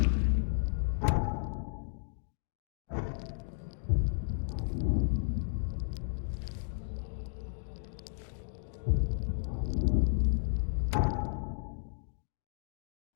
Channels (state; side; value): silent; right; digital silence